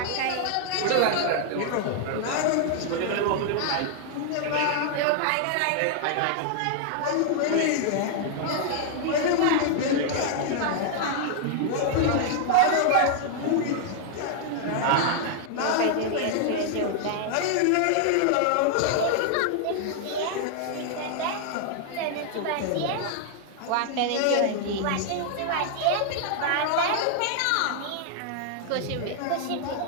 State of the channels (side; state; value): both; different; correlation 0.00